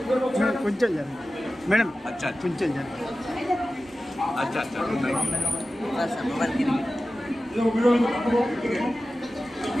कुंचल जाने मैडम। अच्छा कुंचल जाने। अच्छा अच्छा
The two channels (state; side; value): normal; both; correlation 0.95